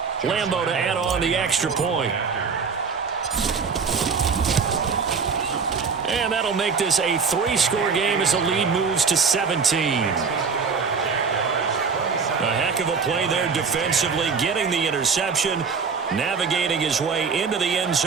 Lambo to add on the extra point. And that'll make this a 3-score game as the lead moves to 17. A heck of a play there defensively, getting the interception, navigating his way into the end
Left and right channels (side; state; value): left; quieter; 5.5 dB